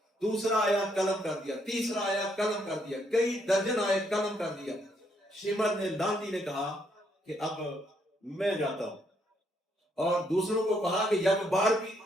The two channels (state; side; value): normal; both; correlation 0.73